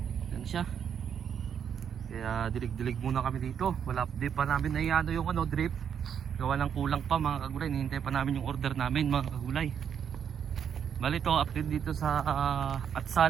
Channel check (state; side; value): quieter; left; 8.0 dB